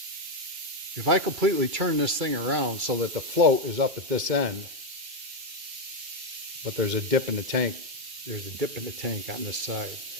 If I completely turn this thing around so that the float is up at this end, but there's a dip in the tank. There's a dip in the tank on this side.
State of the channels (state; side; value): late; left; 2.3 ms